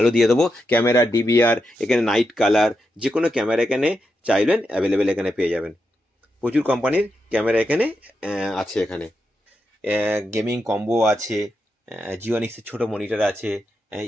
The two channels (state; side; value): normal; both; correlation 0.85